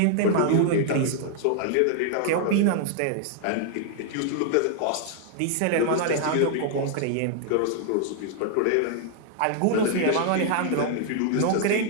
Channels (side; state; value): both; different; correlation 0.00